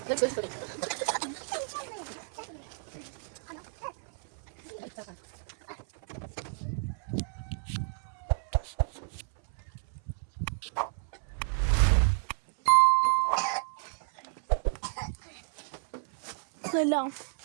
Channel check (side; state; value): left; silent; 57 dB below the other